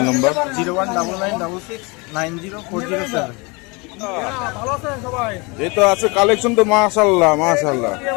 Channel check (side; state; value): right; quieter; 28.1 dB